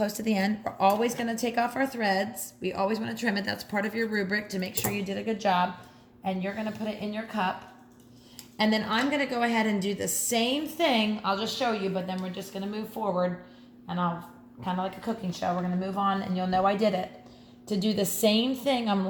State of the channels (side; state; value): both; identical; correlation 1.00